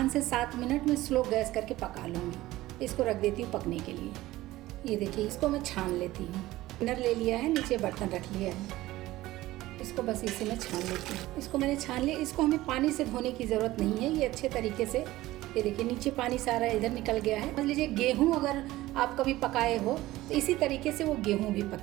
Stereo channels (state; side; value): quieter; left; 17.0 dB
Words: से 7 मिनट में स्लो गैस करके पका लूँगी। इसको रख देती हूँ पकने के लिए। ये देखिए, इसको मैं छान लेती हूँ। टिनर ले लिया है, नीचे बर्तन रख लिया है। इसको बस इसी में छान लेती हूँ। इसको मैंने छान लिया। इसको हमें पानी से धोने की ज़रूरत नहीं है। ये अच्छे तरीके से, ये देखिए नीचे पानी सारा इधर निकल गया है। मान लीजिए गेहूँ अगर आप कभी पकाए हो तो इसी तरीके से वो गेहूँ भी